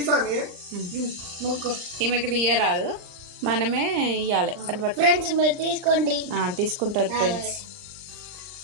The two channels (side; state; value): left; late; 39 ms